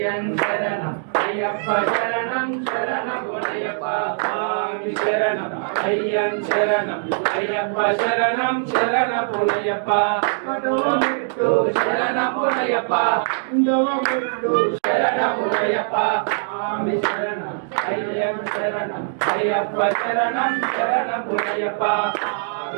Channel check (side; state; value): left; silent; digital silence